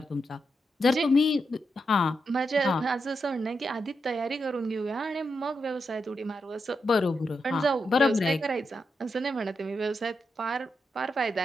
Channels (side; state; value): both; normal; correlation 0.85